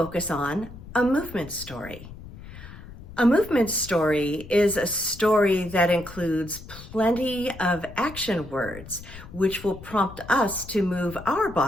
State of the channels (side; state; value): left; noise; rumble, 15 dB below the sound